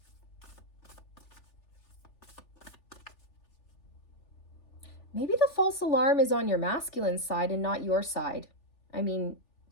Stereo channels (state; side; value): late; right; 3.4 ms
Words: Maybe the false alarm is on your masculine side and not your side. I mean,